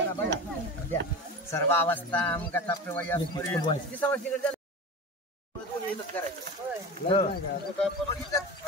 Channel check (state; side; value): normal; both; correlation 0.29